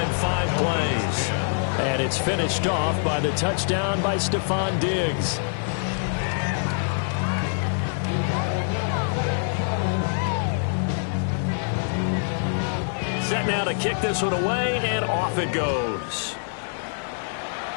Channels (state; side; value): silent; right; digital silence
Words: 5 plays. And it's finished off by the touchdown by Stephon Diggs. Set now to kick this one away, and off it goes.